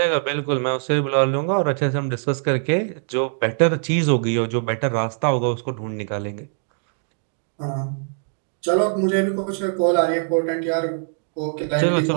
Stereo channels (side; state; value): left; silent; 59 dB below the other